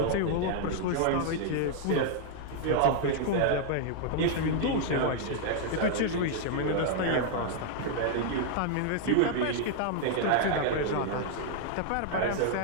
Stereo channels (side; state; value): both; different; correlation 0.00